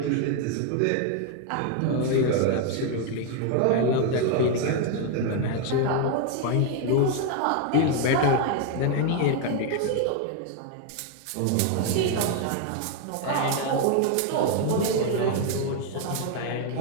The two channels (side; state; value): both; different; correlation 0.01